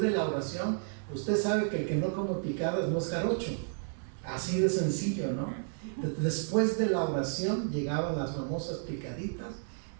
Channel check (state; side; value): silent; left; 56 dB below the other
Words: la oración, usted sabe que el que no come picadas no es jarocho. Así de sencillo, ¿no? Después de la oración llegaban las famosas picaditas